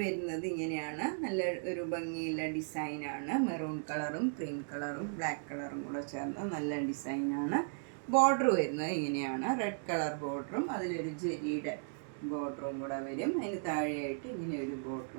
വരുന്നത് ഇങ്ങനെയാണ്. നല്ല ഒരു ഭംഗിയുള്ള ഡിസൈനാണ്. മെറൂൺ കളറും ക്രീം കളറും ബ്ലാക്ക് കളറും കൂടെ ചേർന്ന നല്ല ഡിസൈനാണ്. ബോർഡർ വരുന്നത് ഇങ്ങനെയാണ്. റെഡ് കളർ ബോർഡറും അതിലൊരു ജെരിയുടെ ബോർഡറും കൂടെ വരും. അതിന് താഴെയായിട്ട് ഇങ്ങനെ ഒരു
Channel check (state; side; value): silent; left; digital silence